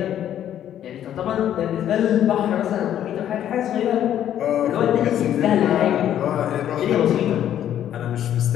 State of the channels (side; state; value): right; quieter; 10.8 dB